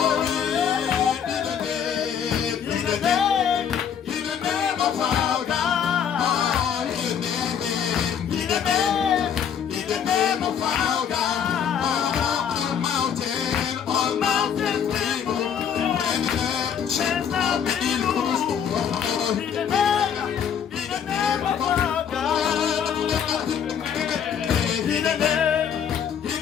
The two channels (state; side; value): quieter; right; 8.1 dB